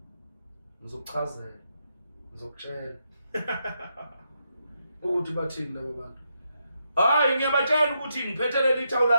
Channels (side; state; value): both; inverted; correlation -0.82